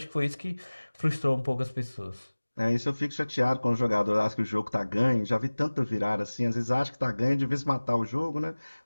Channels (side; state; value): both; inverted; correlation -1.00